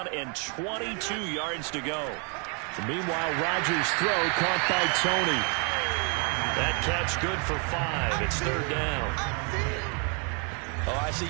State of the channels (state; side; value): quieter; left; 36.1 dB